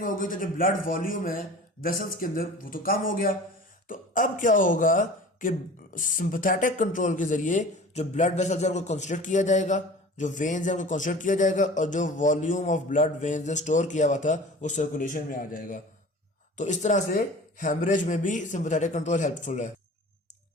हो गई तो जो ब्लड वॉल्यूम है वेसल्स के अंदर वो तो कम हो गया। तो अब क्या होगा कि सिंपैथेटिक कंट्रोल के जरिए जो ब्लड वेसल्स है उनको कंस्ट्रिक्ट किया जाएगा, जो वेन्स है उनको कंस्ट्रिक्ट किया जाएगा और जो वॉल्यूम ऑफ ब्लड वेन्स ने स्टोर किया हुआ था वो सर्कुलेशन में आ जाएगा। तो इस तरह से हेमरेज में भी सिंपैथेटिक कंट्रोल हेल्पफुल है।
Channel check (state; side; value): normal; both; correlation 0.40